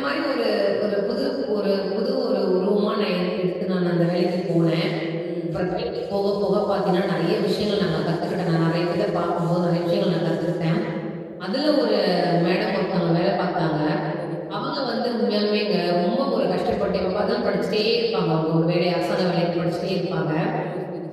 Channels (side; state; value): both; identical; correlation 1.00